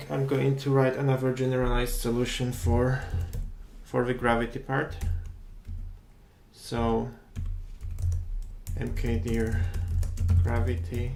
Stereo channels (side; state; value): both; identical; correlation 1.00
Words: I'm going to write another generalized solution for the gravity part. So mkdir gravity,